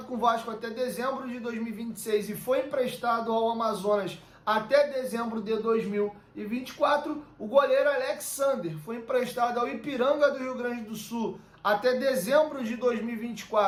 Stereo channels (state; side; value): identical; both; correlation 1.00